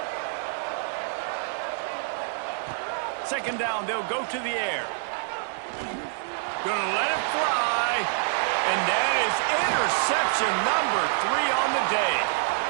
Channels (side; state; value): left; silent; digital silence